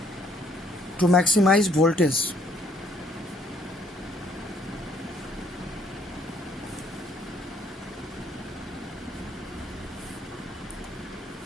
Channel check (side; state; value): both; normal; correlation 0.64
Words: To maximize voltage.